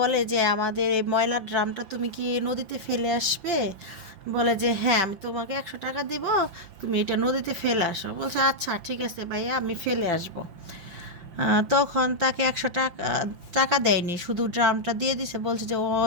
যে আমাদের এই ময়লার ড্রামটা তুমি কি নদীতে ফেলে আসবে? বলে যে হ্যাঁ, আমি তোমাকে 100 টাকা দিব, তুমি এটা নদীতে ফেলে আসো। বলছে আচ্ছা ঠিক আছে ভাইয়া, আমি ফেলে আসবো। তখন তাকে 100 টাকা টাকা দেয়নি, শুধু ড্রামটা দিয়ে দিছে, বলছে যে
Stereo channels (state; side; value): late; left; 5.8 ms